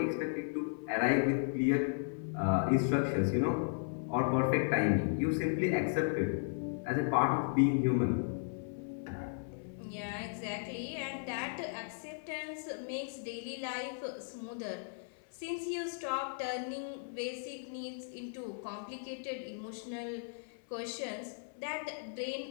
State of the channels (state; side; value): silent; right; 54 dB below the other